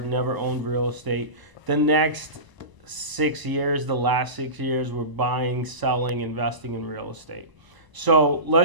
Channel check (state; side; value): late; left; 1.0 ms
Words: Never owned real estate. The next 6 years, the last 6 years, we're buying, selling, investing in real estate. So